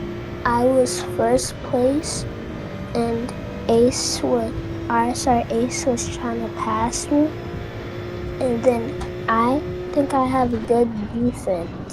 I was first place, and RSR Ace was trying to pass me, and then I think I have a good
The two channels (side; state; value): both; identical; correlation 1.00